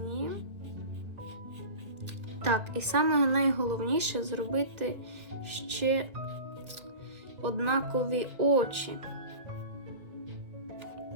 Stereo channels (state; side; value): late; left; 1.6 ms